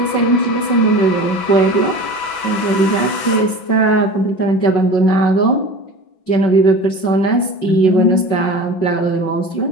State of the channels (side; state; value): right; late; 5.4 ms